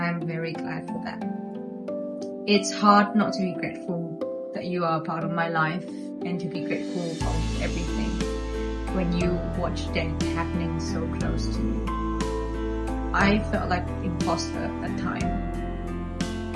very glad for that. It's hard not to be grateful that you are a part of my life and to be grateful of everything when you watch death happening so close to you. I felt like an imposter at that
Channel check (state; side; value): identical; both; correlation 1.00